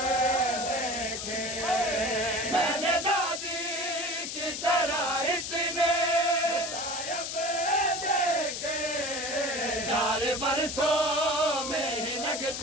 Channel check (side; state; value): left; noise; hiss, 5 dB below the sound